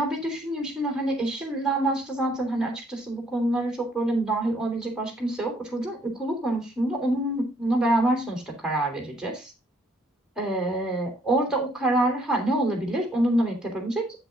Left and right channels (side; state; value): both; normal; correlation 0.66